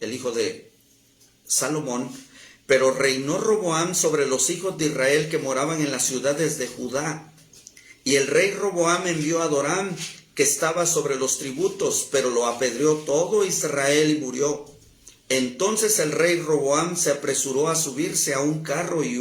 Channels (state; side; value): identical; both; correlation 1.00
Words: hijo de Salomón, pero reinó Roboam sobre los hijos de Israel que moraban en las ciudades de Judá. Y el rey Roboam envió a Doram, que estaba sobre los tributos, pero lo apedreó todo Israel y murió. Entonces el rey Roboam se apresuró a subirse a un carro y